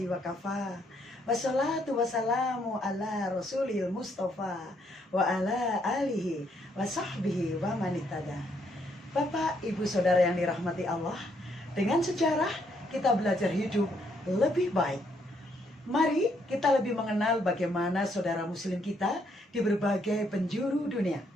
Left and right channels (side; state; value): both; normal; correlation 0.72